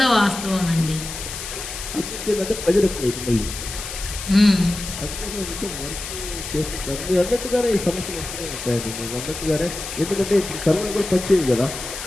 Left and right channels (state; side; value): noise; left; hiss, 8 dB below the sound